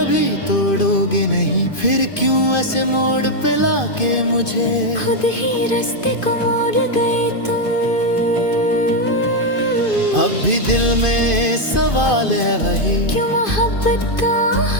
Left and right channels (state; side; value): late; right; 2.5 ms